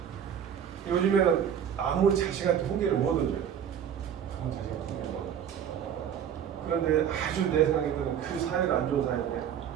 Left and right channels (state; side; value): quieter; left; 8.8 dB